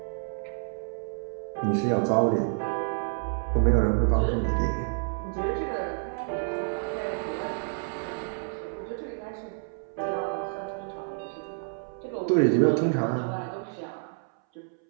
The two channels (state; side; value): silent; left; 59 dB below the other